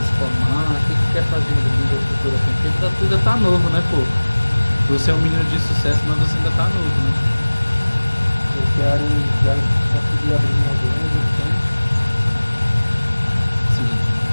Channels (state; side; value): inverted; both; correlation -1.00